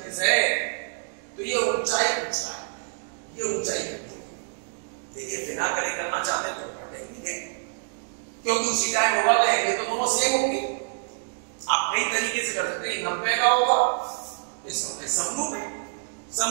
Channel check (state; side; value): silent; left; digital silence